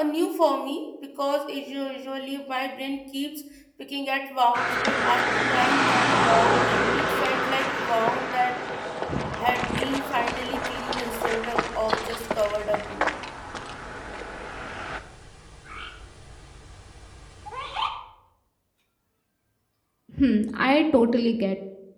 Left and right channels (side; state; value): both; identical; correlation 1.00